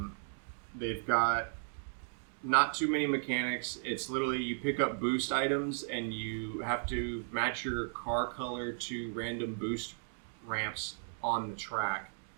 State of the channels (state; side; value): silent; left; digital silence